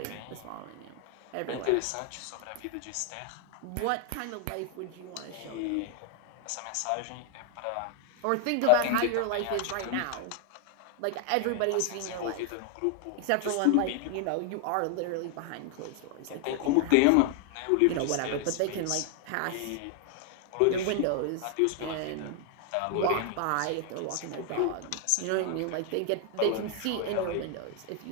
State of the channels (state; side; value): different; both; correlation 0.00